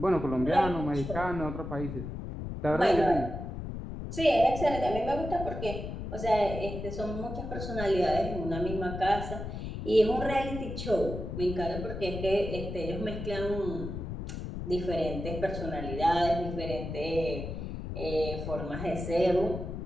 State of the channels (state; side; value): noise; left; rumble, 6 dB below the sound